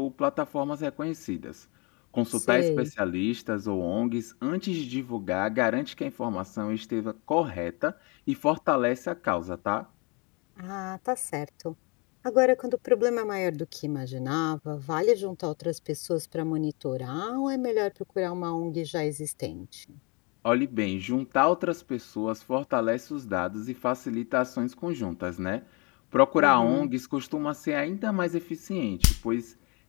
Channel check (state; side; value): quieter; right; 30.6 dB